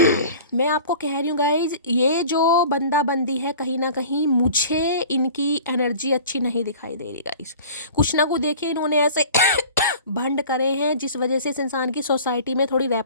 मैं आपको कह रही हूँ गाइज, ये जो बंदा बंदी है कहीं ना कहीं मुझे इनकी एनर्जी अच्छी नहीं दिखाई दे रही गाइज। कुछ ना कुछ देखिए इन्होंने ऐसे भंड करे हैं जिस वजह से इस इंसान की सोसाइटी में थोड़ी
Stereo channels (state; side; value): inverted; both; correlation -0.43